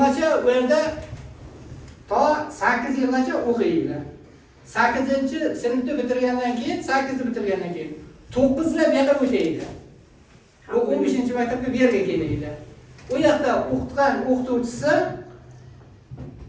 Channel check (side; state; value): both; identical; correlation 1.00